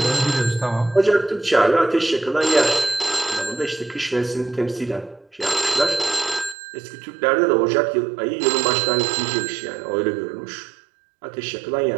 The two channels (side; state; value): left; drops out; at 6.6 s